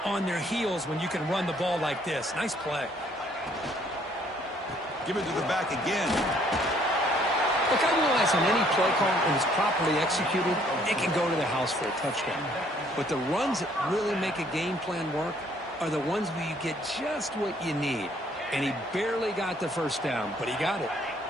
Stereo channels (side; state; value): both; normal; correlation 0.63